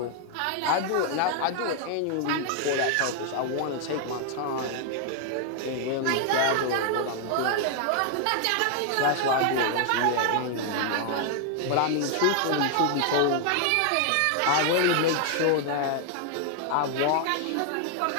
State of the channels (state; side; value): different; both; correlation 0.00